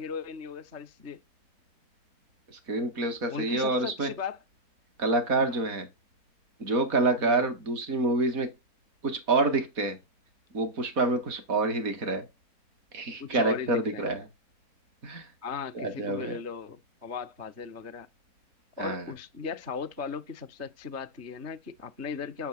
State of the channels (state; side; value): late; left; 4.1 ms